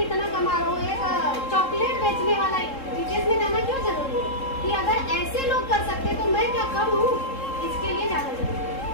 इतना कमा रहा हूँ, एक चॉकलेट बेचने वाला GTS में जाना क्यों जरूरी है? कि अगर ऐसे लोग कर सकते तो मैं क्या कम हूँ? इसके लिए जाना जरूरी है।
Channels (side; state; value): right; late; 3.7 ms